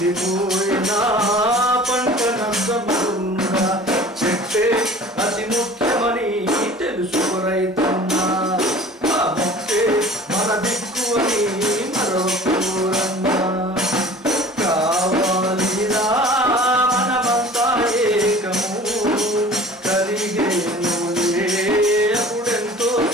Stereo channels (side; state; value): both; normal; correlation 0.44